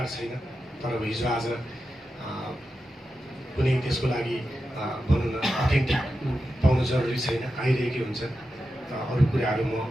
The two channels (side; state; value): both; normal; correlation 0.90